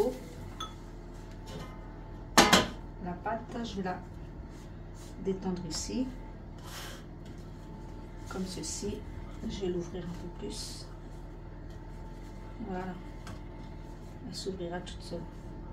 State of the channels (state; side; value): identical; both; correlation 1.00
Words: la pâte, je vais la détendre ici, comme ceci. Je vais l'ouvrir un peu plus. Voilà, elle s'ouvrira toute seule.